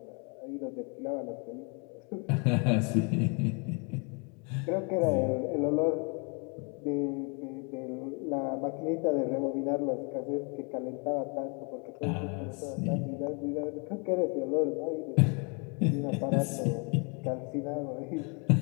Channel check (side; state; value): right; quieter; 34.7 dB